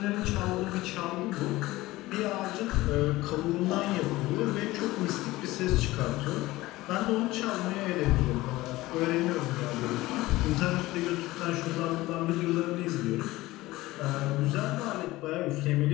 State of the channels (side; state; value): right; quieter; 18.5 dB